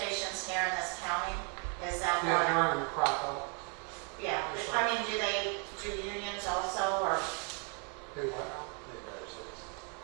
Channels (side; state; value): left; quieter; 36.8 dB